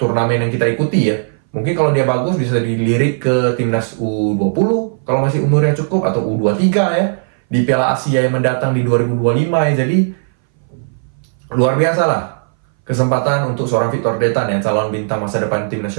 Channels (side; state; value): left; silent; 62 dB below the other